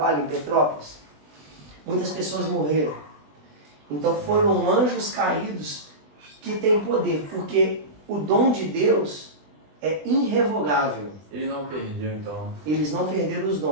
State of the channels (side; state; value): left; late; 20 ms